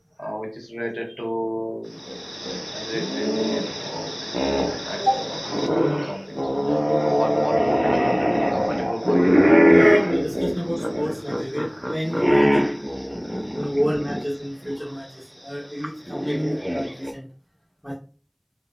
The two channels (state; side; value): identical; both; correlation 1.00